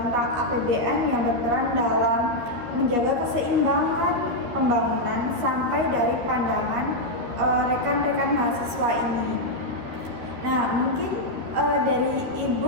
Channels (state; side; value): late; left; 12 ms